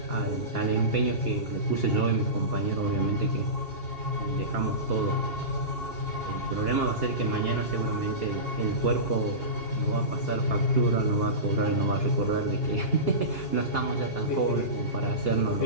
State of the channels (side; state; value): right; late; 2.8 ms